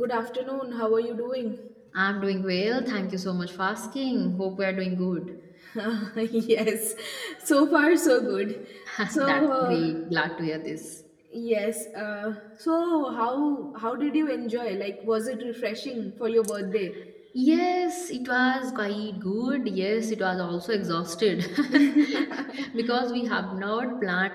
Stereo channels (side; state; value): both; identical; correlation 1.00